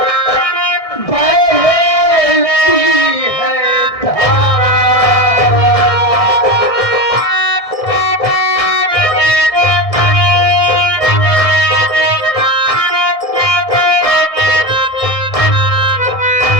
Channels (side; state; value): right; late; 1.7 ms